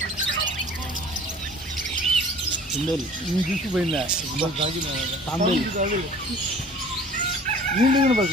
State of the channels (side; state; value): both; normal; correlation 0.47